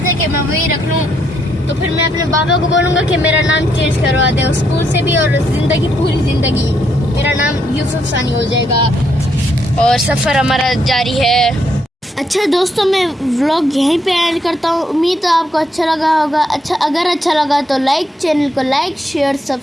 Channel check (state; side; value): normal; both; correlation 0.75